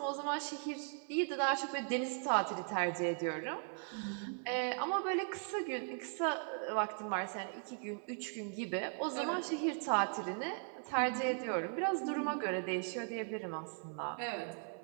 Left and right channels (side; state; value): left; silent; 52 dB below the other